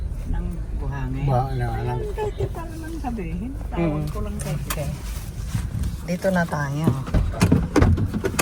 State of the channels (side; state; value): both; identical; correlation 1.00